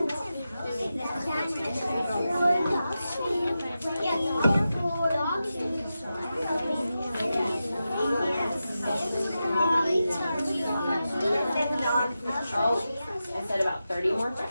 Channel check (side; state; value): both; inverted; correlation -0.91